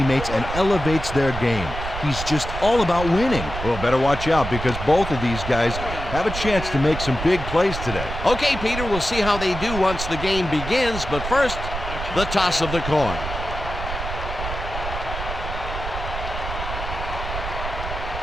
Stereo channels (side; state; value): right; noise; rumble, 7 dB below the sound